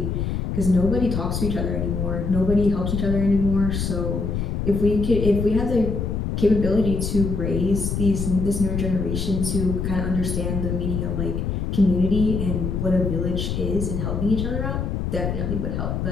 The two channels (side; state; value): left; noise; rumble, 2 dB below the sound